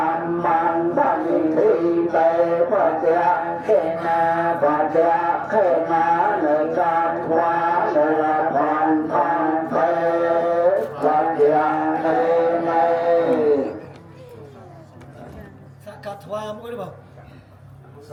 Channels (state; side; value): identical; both; correlation 1.00